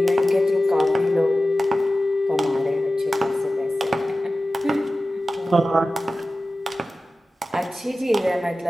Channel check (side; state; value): both; normal; correlation 0.95